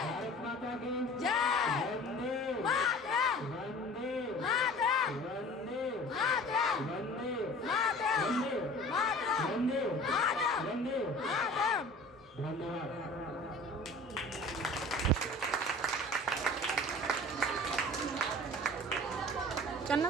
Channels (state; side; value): normal; both; correlation 0.43